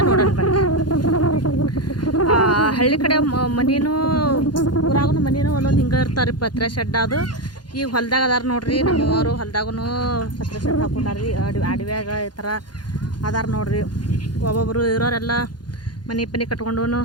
ನೋಡೋಣ ಬನ್ನಿ. ಹಳ್ಳಿ ಕಡೆ ಮನೇನು ಊರಾಗೂ ಮನೇನು ಒಂದೊಂದು ಹಿಂಗೆ ಇರ್ತಾರೆ ರೀ, ಪತ್ರೆ ಶೆಡ್. ಅದು ಈಗ ಹೊಲ್ದಾಗ ಅದಾರ ನೋಡ್ರಿ, ನಮ್ಮವರು ಹೊಲ್ದಾಗೂ ಪತ್ರೆ ಶೆಡ್ ಹಾಕೊಂಡಾರ್ರಿ. ಅಡವ್ಯಾಗ ಈ ಥರ ಅದಾರ ನೋಡ್ರಿ. ಒಬ್ಬೊಬ್ಬರು ಇರೋರೆಲ್ಲ ಮನೆ ಪನಿ ಕಟ್ಕೊಂಡು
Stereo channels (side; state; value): right; late; 0.70 ms